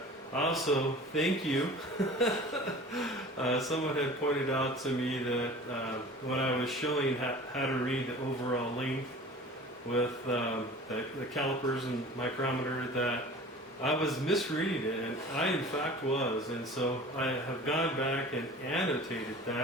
also, thank you. Someone had pointed out to me that when I was showing how to read the overall length with the calipers and micrometer, that I was misreading it, and I in fact was. And so I have gone back and annotated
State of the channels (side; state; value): both; normal; correlation 0.41